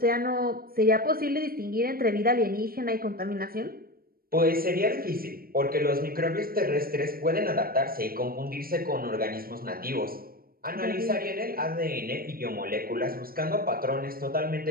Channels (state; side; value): late; left; 0.43 ms